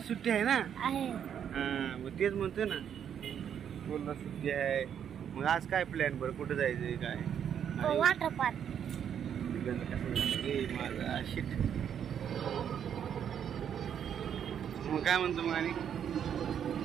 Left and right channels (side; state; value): left; quieter; 8.7 dB